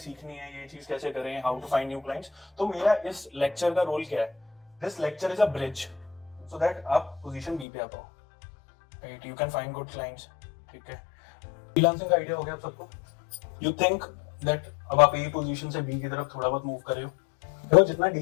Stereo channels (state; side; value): drops out; right; at 7.7 s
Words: है, ये चीज कैसे करें, how to find new clients. तो मेरा इस लेक्चर का रोल क्या है, this lecture is a bridge so that आप पोजीशन बी पे आ पाओ, right, you can find good clients, ठीक है। फ्रीलांसिंग का आइडिया हो गया आप सबको। यू थिंक दैट अब आप ए पोजीशन से बी की तरफ थोड़ा बहुत मूव कर रहे हो, तो जितना